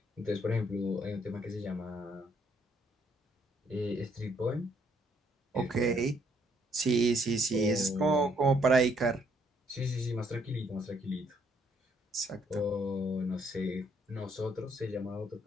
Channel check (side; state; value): both; normal; correlation 0.69